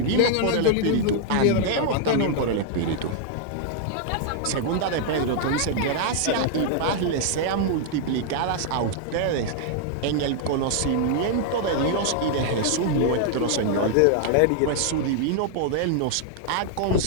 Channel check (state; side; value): different; both; correlation -0.01